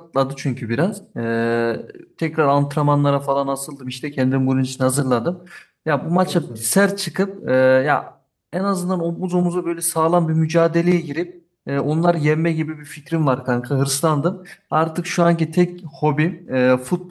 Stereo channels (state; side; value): identical; both; correlation 1.00